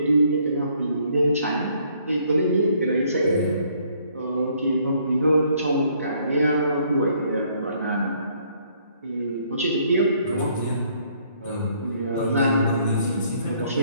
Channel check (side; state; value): both; inverted; correlation -0.65